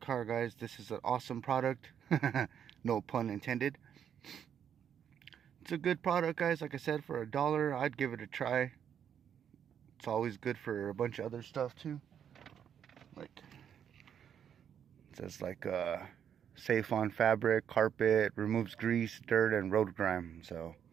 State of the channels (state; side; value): quieter; left; 8.7 dB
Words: guys. This is an awesome product. No pun intended. It's a good product, guys. Like I said, for $1, I'd give it a try. It's always good for a bunch of other stuff too. Like, it says like safe on fabric, carpet, removes grease, dirt, and road grime. So